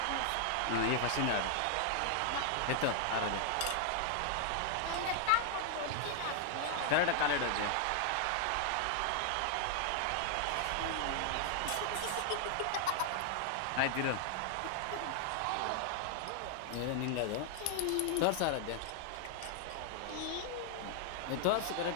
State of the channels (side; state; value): both; different; correlation 0.00